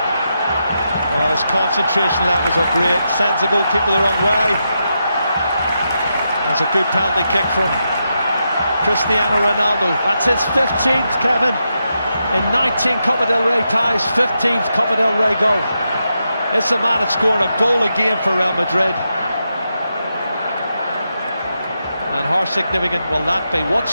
Well, his concentration levels are great. Sends the goalkeeper the wrong way. That's a good penalty kick from Cristiano Ronaldo. That's his 15th, Kevin. in 19 Copa del Rey ties, 15th Copa del Rey goal. It's a man that scored a goal a game for Real Madrid. And how significant will that be? What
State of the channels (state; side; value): inverted; both; correlation -0.85